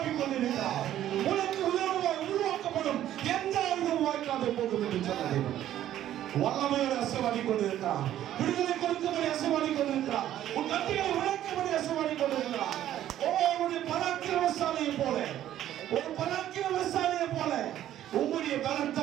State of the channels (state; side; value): quieter; left; 12.1 dB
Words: கொண்டிருக்கிறார். உனக்கு விரோதமாய் உருவாக்கப்படும் எந்த ஆயுதமும் வாய்க்காத போகும் என்று சொன்னது வல்லமையோடு அசைவாடி கொண்டிருக்கிறார். விடுதலை கொடுக்கும்படி அசைவாடி கொண்டிருக்கிறார். உன் கட்டிகளை உழைக்கும்படி அசைவாடி கொண்டிருக்கிறார். உன்னுடைய பராக்கிரமசாலியை போல ஒரு பராக்கிரமசாலியை போல உங்களுடைய